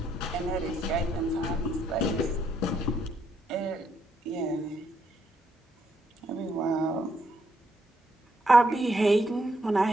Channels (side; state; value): both; normal; correlation 0.75